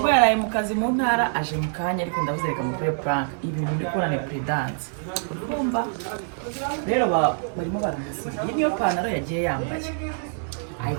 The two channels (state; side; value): silent; left; digital silence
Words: yaraye mu kazi mu ntara aje mu kanya ariko ndabuzereka mu kuri prank ibintu ndi korane predance uri kumva rero barimo baramusiga iyi niyo pantaro yagiye yambaye